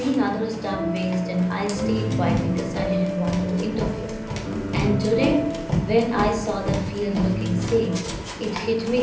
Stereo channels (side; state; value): both; identical; correlation 1.00